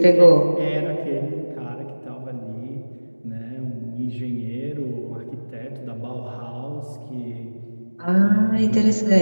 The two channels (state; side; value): inverted; both; correlation -1.00